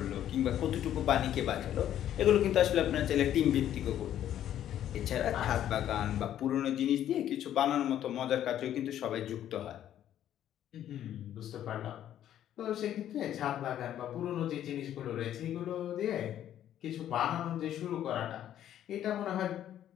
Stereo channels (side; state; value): right; quieter; 11.2 dB